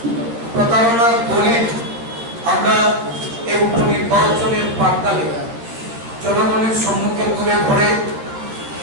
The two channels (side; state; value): left; late; 13 ms